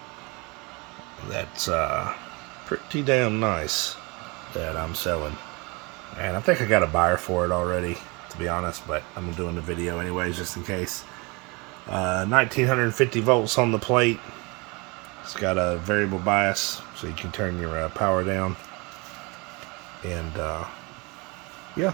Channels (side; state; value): left; quieter; 27.8 dB